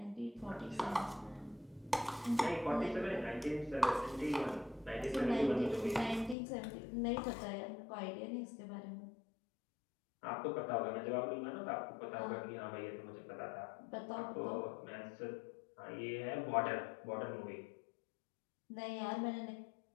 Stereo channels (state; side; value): drops out; right; at 6.4 s